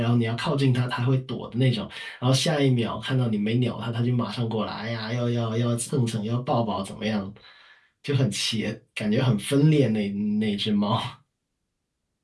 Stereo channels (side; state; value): both; identical; correlation 1.00